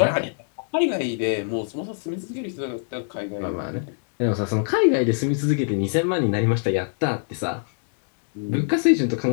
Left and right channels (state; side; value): silent; right; digital silence